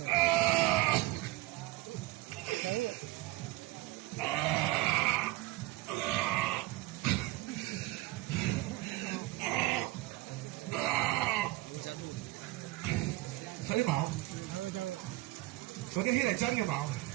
睇啲毛，嗰啲血係真嘅毛，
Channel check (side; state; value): left; quieter; 18.2 dB